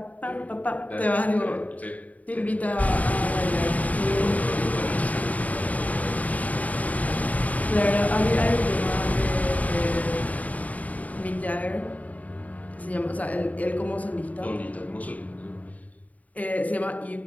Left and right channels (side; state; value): right; late; 0.072 ms